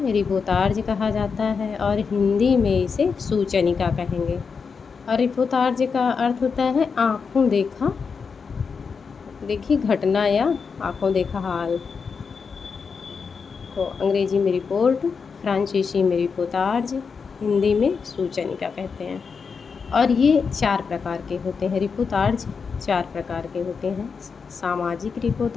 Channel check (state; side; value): quieter; right; 5.5 dB